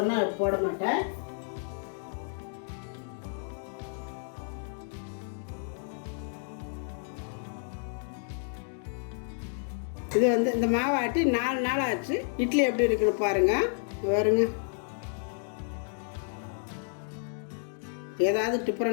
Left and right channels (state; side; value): silent; right; 57 dB below the other